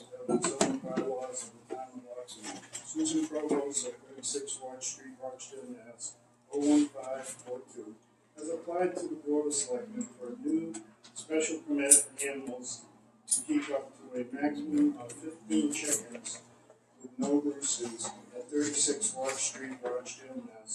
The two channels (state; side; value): identical; both; correlation 1.00